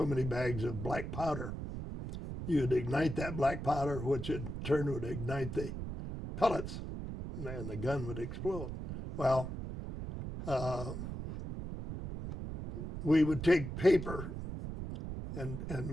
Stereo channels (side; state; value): right; noise; rumble, 6 dB below the sound